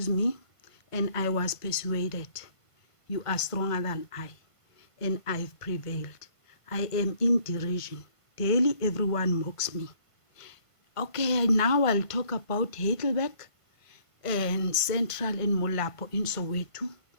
me, and I was persuaded. You are stronger than I, and I've prevailed. I am in derision. Daily everyone mocks me. Okay, now I'll talk about Heidelberg and Central and Molapo in Soweto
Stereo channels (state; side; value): late; right; 1.5 ms